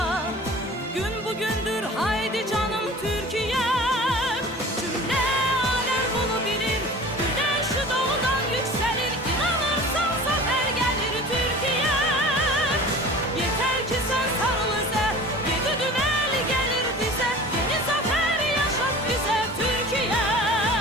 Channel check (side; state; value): both; normal; correlation 0.41